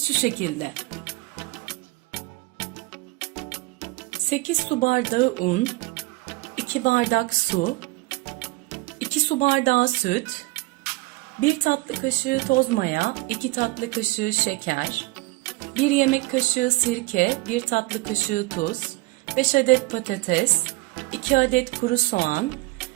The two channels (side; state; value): left; quieter; 21.6 dB